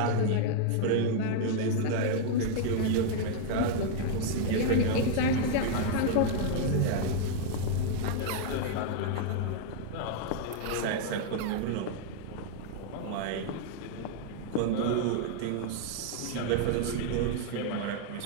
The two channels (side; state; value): both; different; correlation -0.01